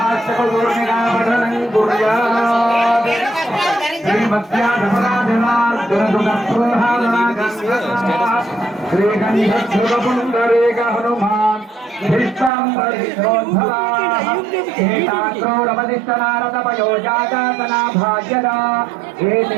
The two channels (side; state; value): left; drops out; at 12.5 s